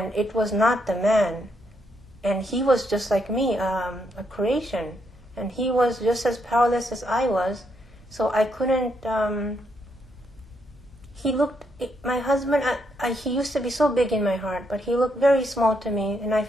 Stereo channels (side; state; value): right; noise; rumble, 27 dB below the sound